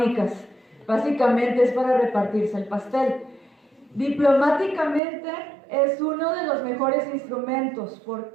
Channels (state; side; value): drops out; left; at 5.0 s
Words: Básicamente es para repartirse el pastel. Diplomáticamente es uno de los mejores instrumentos.